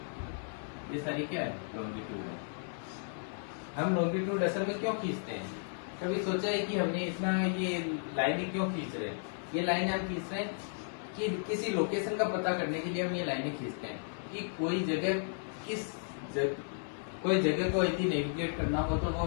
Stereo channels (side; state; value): right; silent; 55 dB below the other